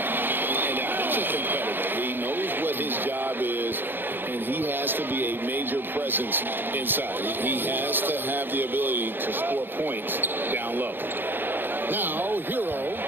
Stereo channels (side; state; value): left; late; 0.098 ms